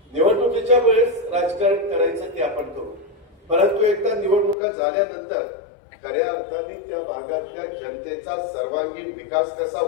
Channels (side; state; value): right; drops out; at 4.5 s